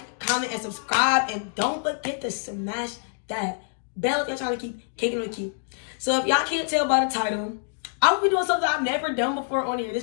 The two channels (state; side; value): silent; right; digital silence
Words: comment, and subscribe. And don't forget to smash that bell if y'all trying to keep kicking with Key. So if y'all can't tell by the title, I will be doing something I've never done before on here. This